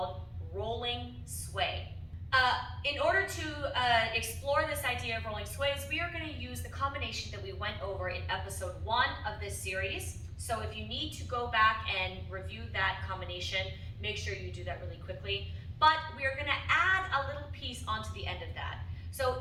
rolling sway. In order to explore this idea of rolling sways, we are going to use the combination that we went over in episode 1 of this series. So if you need to go back and review that combination, make sure you do that really quickly. But we are going to add a little piece onto the end of that.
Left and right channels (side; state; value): both; identical; correlation 1.00